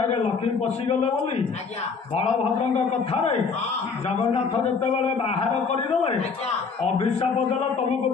ଲକ୍ଷ୍ମୀ ପଶିଗଲେ ବୋଲି ଆଜ୍ଞା ବଳଭଦ୍ରଙ୍କ କଥାରେ ଜଗନ୍ନାଥ ଯେତେବେଳେ ବାହାର କରିଦେଲେ, ଅଭିଶାପ ଦେଲେ ତମକୁ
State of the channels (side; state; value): right; quieter; 5.2 dB